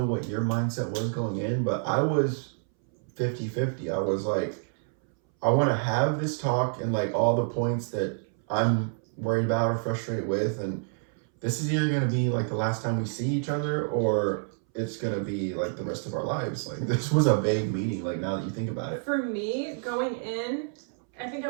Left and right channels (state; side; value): silent; left; 59 dB below the other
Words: what your mindset was going in, but I was 50-50. I was like, I want to have this talk and like all the points that I'm worried about or frustrated with, and this is either going to be like the last time we see each other or it's going to be like the rest of our lives. Like, this was a vague meeting, like, now that you think about it. For me, going in, I think I